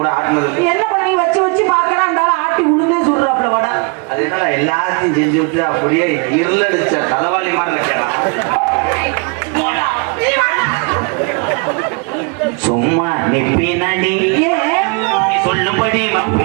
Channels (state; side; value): quieter; left; 31.5 dB